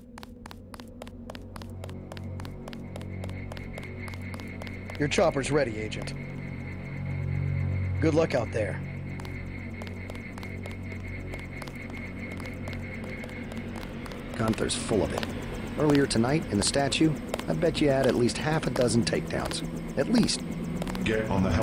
Your chopper's ready, Agent. Good luck out there. Gunther's full of it. Earlier tonight, in the statue, I bet you had at least half a dozen takedowns. At least. Get on the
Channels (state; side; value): identical; both; correlation 1.00